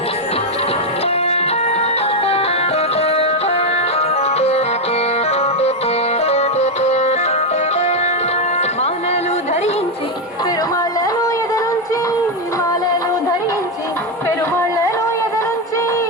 ధరించి పెరుమాళ్ళను ఎదనుంచి మాలను ధరించి పెరుమాళ్ళను ఎదనుంచి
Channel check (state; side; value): normal; both; correlation 0.05